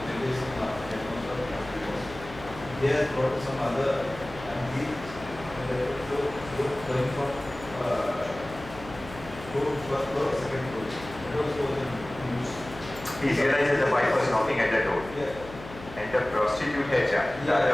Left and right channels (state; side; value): noise; left; hum, 15 dB below the sound